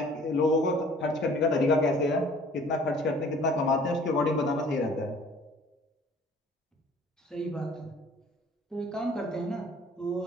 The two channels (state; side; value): normal; both; correlation 0.52